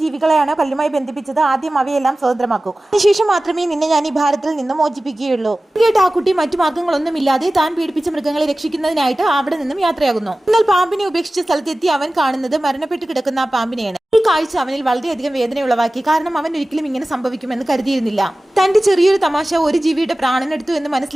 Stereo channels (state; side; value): normal; both; correlation 0.97